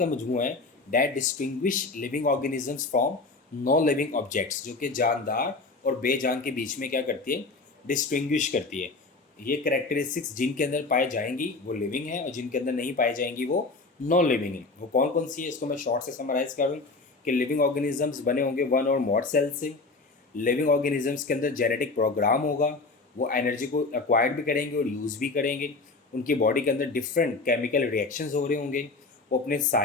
मजमू है that distinguish living organisms from non living objects, जो कि जानदार और बेजान के बीच में क्या करती है, डिस्टिंग्विश करती है। ये करेक्टरिस्टिक्स जिनके अंदर पाए जाएंगी वो लिविंग है, और जिनके अंदर नहीं पाई जाएंगी वो नॉन लिविंग है। वो कौन कौन सी है, इसको मैं शॉर्ट से समराइज करूँ कि लिविंग ऑर्गेनिजम्स बने होंगे वन और मोर सेल से। लिविंग ऑर्गेनिजम्स के अंदर जेनेटिक प्रोग्राम होगा, वो एनर्जी को एक्वायर्ड भी करेंगे और यूज़ भी करेंगे। उनकी बॉडी के अंदर डिफरेंट केमिकल रिएक्शंस हो रहे होंगे, वो अपने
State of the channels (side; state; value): right; quieter; 3.7 dB